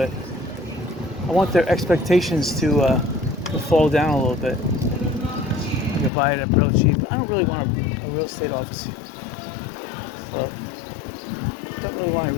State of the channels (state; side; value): drops out; right; at 6.1 s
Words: I want their expectations to fall down a little bit. I can buy it at real cheap. I don't really want a real estate office here. Well, I don't really want a